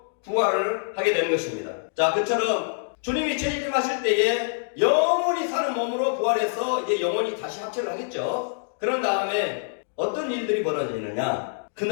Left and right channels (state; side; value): silent; right; digital silence